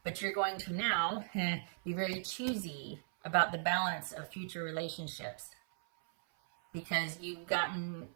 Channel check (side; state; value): left; silent; 53 dB below the other